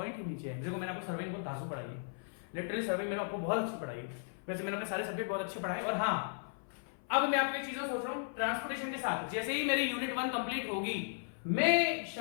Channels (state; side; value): silent; right; 54 dB below the other